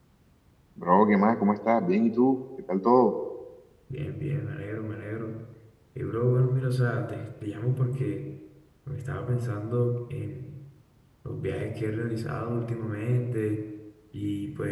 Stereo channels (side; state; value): both; identical; correlation 1.00